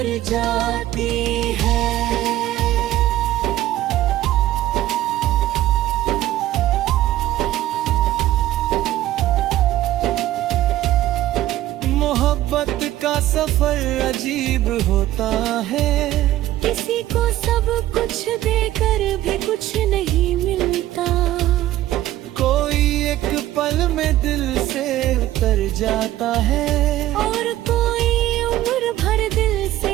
जाती है। मोहब्बत का सफर अजीब होता है, किसी को सब कुछ देकर भी कुछ नहीं मिलता। कोई एक पल में दिल से उतर जाता है, और कोई उम्र भर दिल से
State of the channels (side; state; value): left; quieter; 14.4 dB